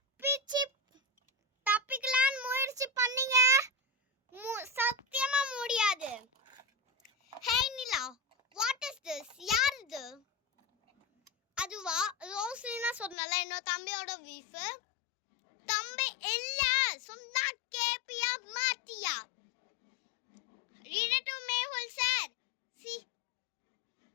தப்பிக்கலான்னு முயற்சி பண்ணீங்க, சத்தியமா முடியாது. ஹே நிலா, வாட் இஸ் திஸ்? யார் இது? அதுவா ரோஸ்லினா சொன்னல, என்னோட தம்பியோட வீஃப். தம்பி இல்ல சொன்னா கேப்பியா மாட்டியா? Detective Mehul sir.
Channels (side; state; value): right; drops out; at 13.2 s